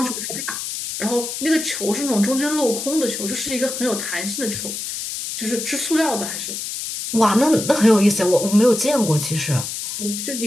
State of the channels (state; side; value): noise; left; hiss, 6 dB below the sound